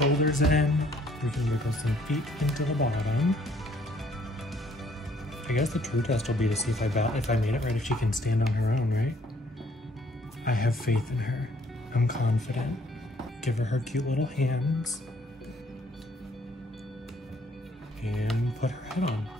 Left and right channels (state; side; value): normal; both; correlation 0.63